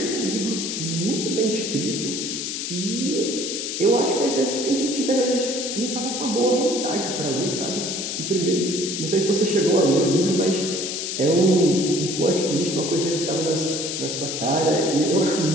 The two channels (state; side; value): noise; left; hiss, 4 dB below the sound